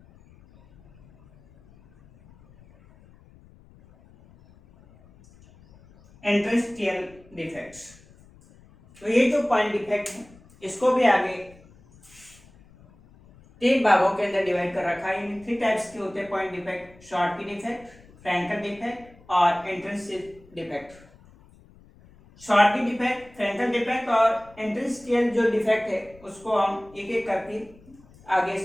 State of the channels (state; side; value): noise; left; rumble, 25 dB below the sound